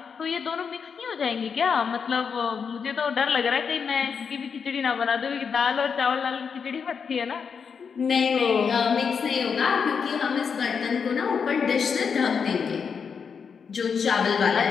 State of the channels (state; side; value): quieter; right; 6.2 dB